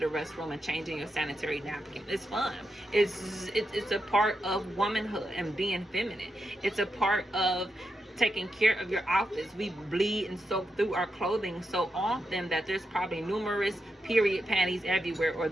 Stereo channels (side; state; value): both; normal; correlation 0.86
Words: restroom and changing your sanitary napkin. It's fun. It's a part of womanhood and being feminine. It's a part of taking care of your outfits. We bleed and soak through our clothing so often that there's probably numerous period panties everywhere, or